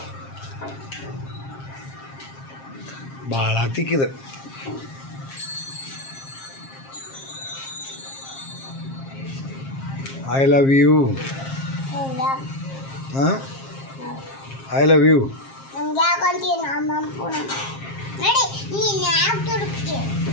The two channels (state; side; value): late; right; 7.5 ms